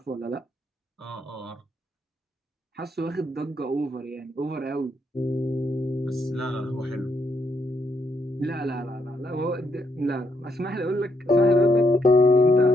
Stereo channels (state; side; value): normal; both; correlation 0.76